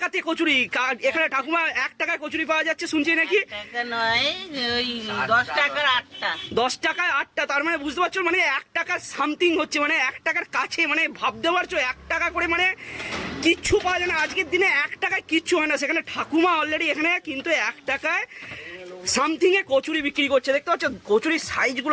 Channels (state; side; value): identical; both; correlation 1.00